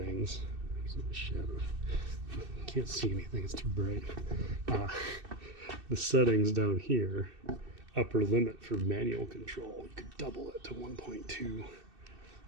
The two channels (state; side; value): late; left; 2.6 ms